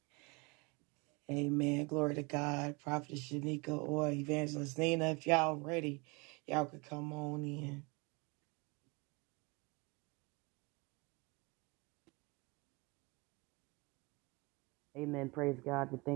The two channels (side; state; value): left; quieter; 28.1 dB